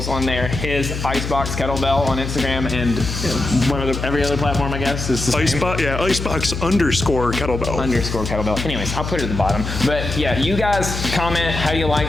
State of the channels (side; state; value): left; noise; hum, 5 dB below the sound